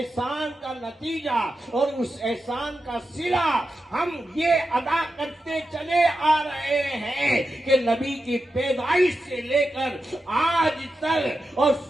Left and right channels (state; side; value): normal; both; correlation 0.90